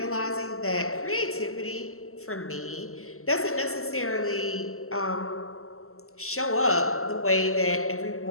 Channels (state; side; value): late; right; 0.63 ms